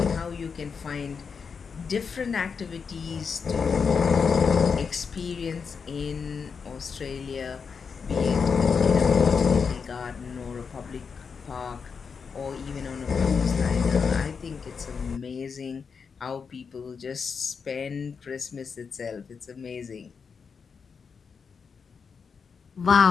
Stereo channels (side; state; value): right; quieter; 5.8 dB